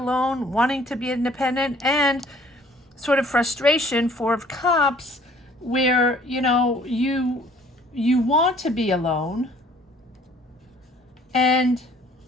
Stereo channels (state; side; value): normal; both; correlation 0.57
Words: wanting to be independent, and sort of frustration, Four of Cups, where, you know, you want to be alone, and